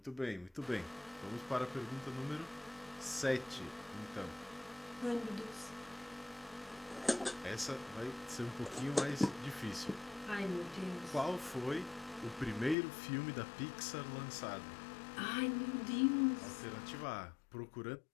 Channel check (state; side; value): drops out; right; at 12.8 s